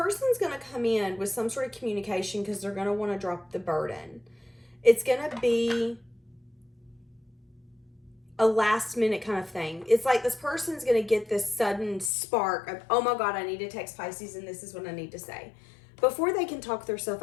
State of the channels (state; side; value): drops out; right; at 12.1 s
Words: going to come in with some sort of communication because they're going to want to drop the burden. It's going to be a last minute kind of thing. It's like this person's going to get this sudden spark of, oh my God, I need to text Pisces and this is what I need to say. Before they can talk themselves